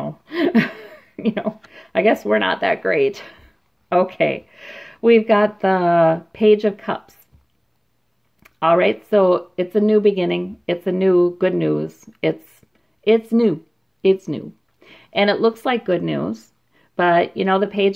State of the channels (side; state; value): both; identical; correlation 1.00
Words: I guess we're not that great. Okay. We've got the Page of Cups. All right, so it's a new beginning. It's a new good news. It's new. It's new. And it looks like good news. But, you know, the